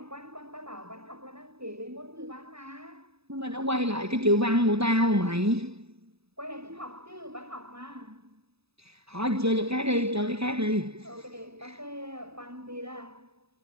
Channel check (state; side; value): late; left; 0.79 ms